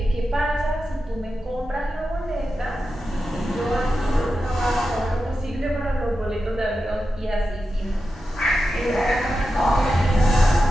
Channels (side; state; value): both; normal; correlation 0.90